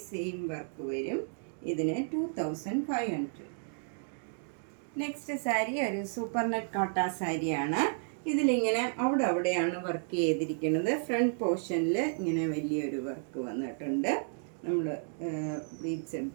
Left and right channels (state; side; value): silent; left; digital silence